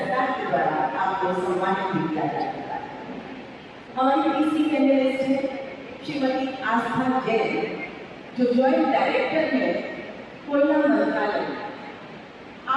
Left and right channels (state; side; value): identical; both; correlation 1.00